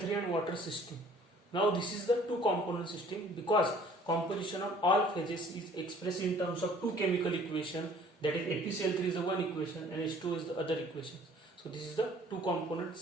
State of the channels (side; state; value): both; normal; correlation 0.54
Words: and water system. Now this is the two component system because composition of all phases is expressed in terms of two chemical equation, that is FeCl3 is the one equation and H2O is the other equation. So this is the two component